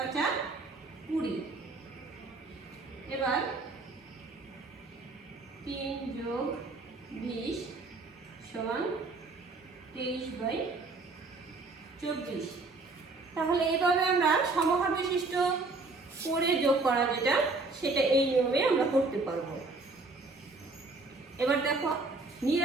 5 20। এবার 3 যোগ 20 সমান 23/24। তাহলে এইভাবে আমরা সমহার বিশিষ্ট করে যোগ করা যেটা সেটা এই নিয়মে আমরা করতে পারবো। এবার দেখো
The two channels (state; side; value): quieter; left; 3.5 dB